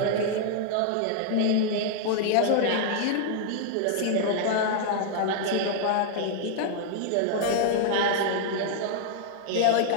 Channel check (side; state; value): both; different; correlation -0.01